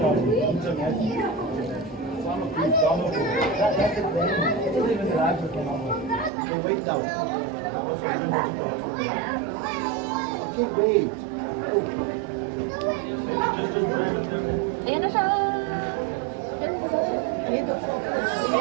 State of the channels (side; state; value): left; drops out; at 6.3 s